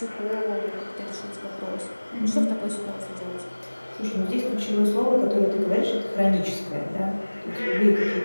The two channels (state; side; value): inverted; both; correlation -1.00